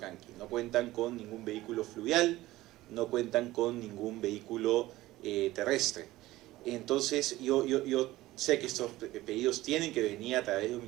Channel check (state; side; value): quieter; left; 17.2 dB